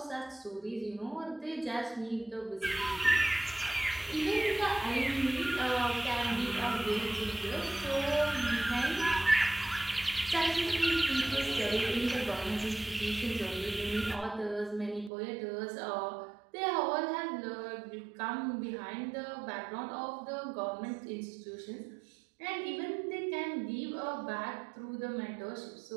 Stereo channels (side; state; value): left; drops out; at 15.1 s